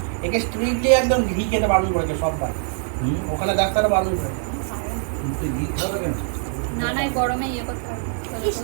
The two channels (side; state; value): left; silent; 55 dB below the other